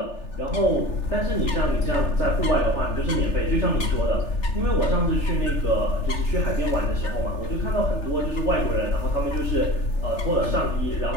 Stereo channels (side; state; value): right; late; 3.3 ms